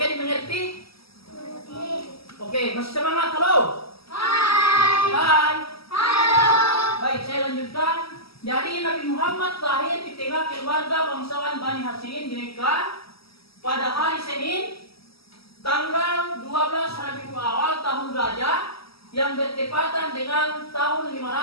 dimengerti? Oke, masih semangat? Halo? Hai. Halo. Baik, saya lanjutkan. Jadi Nabi Muhammad lahir di tengah keluarga bangsawan Bani Hashim di Mekah pada hari Senin, tanggal 12 Rabiul Awal tahun gajah yang bertepatan dengan tahun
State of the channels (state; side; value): late; right; 0.76 ms